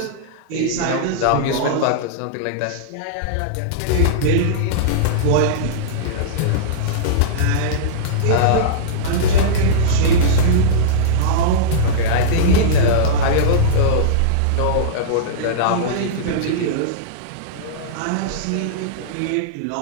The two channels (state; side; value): different; both; correlation -0.03